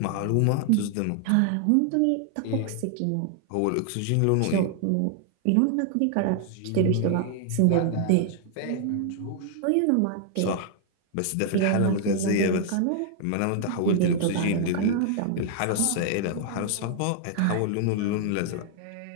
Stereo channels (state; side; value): different; both; correlation 0.00